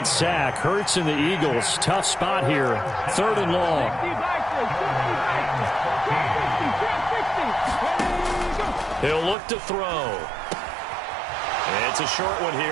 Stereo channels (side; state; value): left; drops out; at 9.3 s